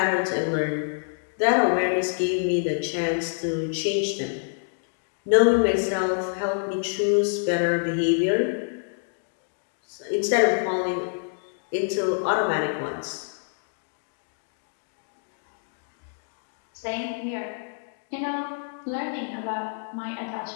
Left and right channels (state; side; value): silent; right; digital silence